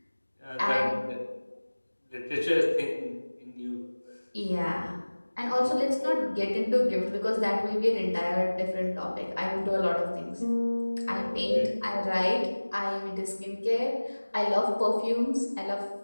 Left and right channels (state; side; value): inverted; both; correlation -1.00